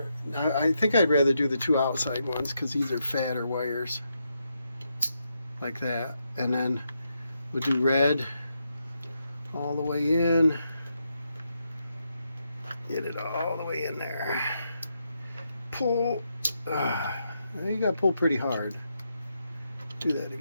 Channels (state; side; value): inverted; both; correlation -0.82